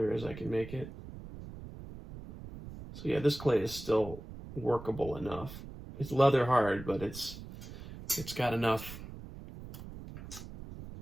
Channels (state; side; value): noise; right; rumble, 13 dB below the sound